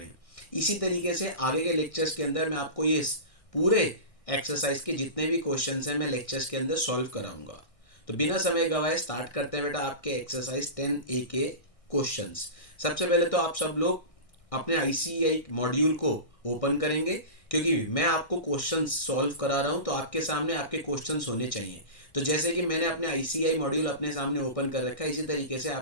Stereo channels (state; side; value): late; right; 1.6 ms